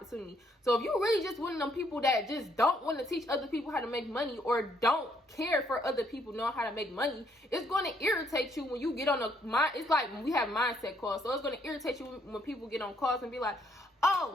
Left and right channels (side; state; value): both; normal; correlation 0.70